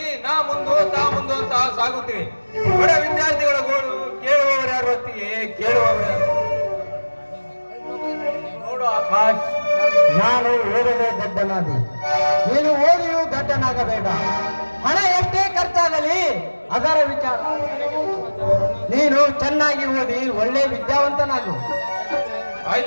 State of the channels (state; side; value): inverted; both; correlation -1.00